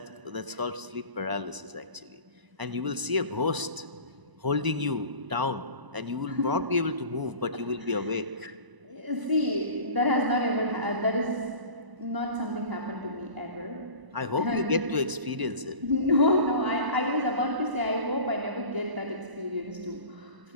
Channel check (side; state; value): left; late; 1.0 ms